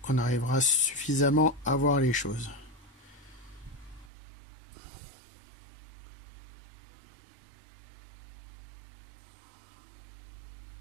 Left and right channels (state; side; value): drops out; left; at 4.1 s